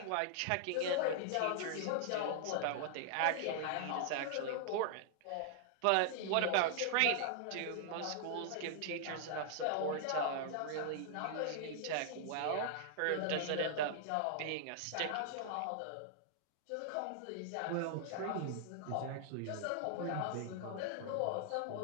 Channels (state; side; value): different; both; correlation -0.01